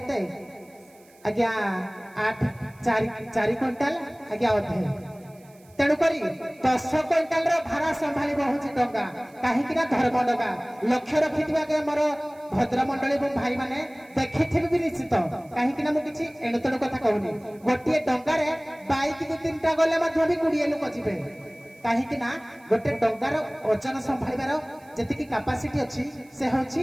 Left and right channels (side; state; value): right; noise; hiss, 29 dB below the sound